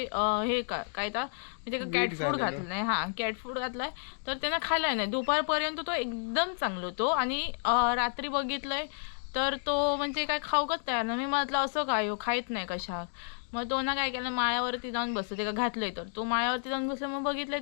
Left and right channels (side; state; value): right; silent; digital silence